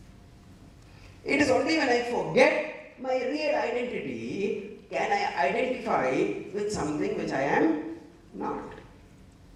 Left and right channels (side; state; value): both; identical; correlation 1.00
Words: It is only when I forget my real identity can I identify with something which I am not.